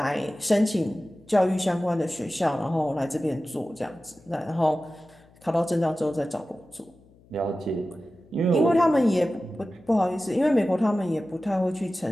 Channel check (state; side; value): noise; left; hum, 28 dB below the sound